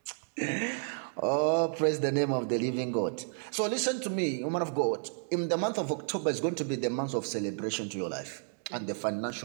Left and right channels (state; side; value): silent; left; digital silence